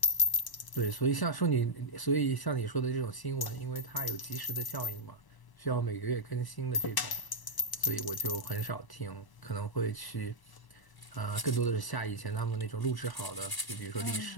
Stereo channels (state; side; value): late; right; 1.0 ms